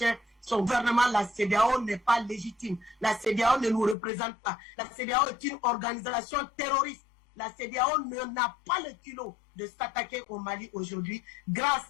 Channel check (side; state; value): right; drops out; at 4.0 s